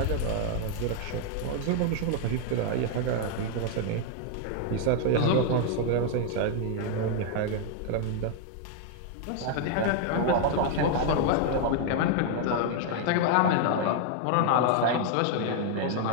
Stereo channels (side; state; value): both; different; correlation 0.00